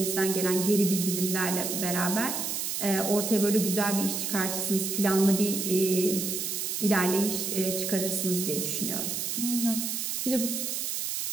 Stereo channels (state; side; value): noise; right; hiss, 2 dB below the sound